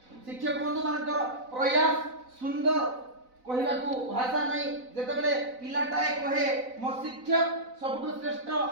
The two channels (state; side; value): late; left; 4.0 ms